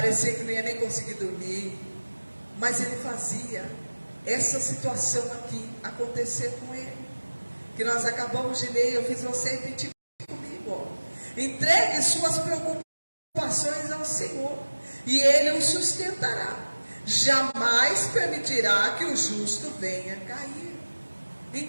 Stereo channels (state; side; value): inverted; both; correlation -1.00